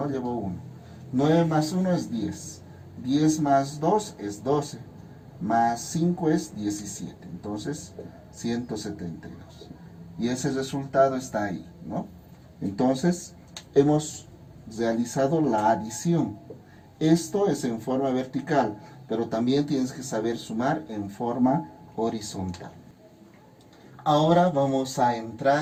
Llevo 1. 9 más 1 es 10. 10 más 2 es 12. Más 5 es 17. Entonces, 172. Y ese resultado está ahí, ¿no? Entonces, hemos realizado la adición. Esto es en forma vertical, pero también tienes que saber sumar en forma horizontal. Ahora vamos a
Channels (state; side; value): identical; both; correlation 1.00